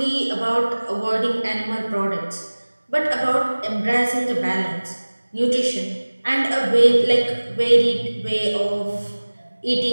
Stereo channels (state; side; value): inverted; both; correlation -1.00